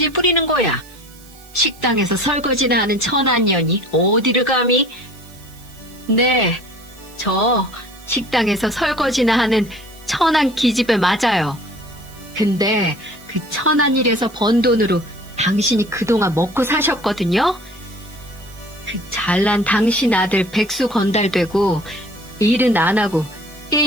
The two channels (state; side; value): noise; right; hiss, 24 dB below the sound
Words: 거야? 식당에서 설거지나 하는 천한년이 어디를 감히? 네, 저 식당에서 설거지나 하는 천한 기집애 맞아요. 근데 그 천한 일에서 번 돈으로 당신이 그동안 먹고 사셨거든요? 그 잘난 당신 아들 백수 건달되고 일은 안 하고